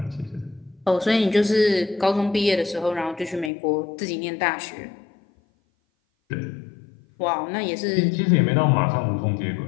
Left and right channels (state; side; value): drops out; right; at 3.5 s